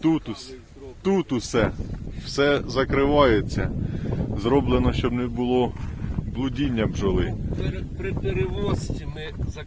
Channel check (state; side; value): identical; both; correlation 1.00